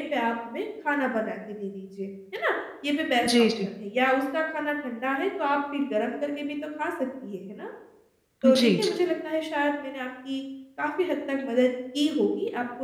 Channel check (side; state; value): both; identical; correlation 1.00